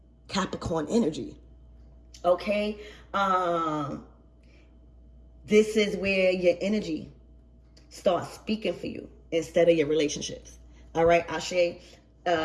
Capricorn energy. Okay. This is where your energy starts speaking for you instead of your relationships. All right. Ashe.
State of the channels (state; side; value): identical; both; correlation 1.00